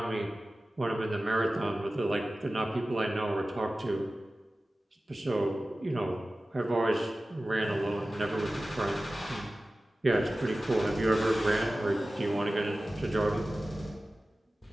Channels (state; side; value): normal; both; correlation 0.96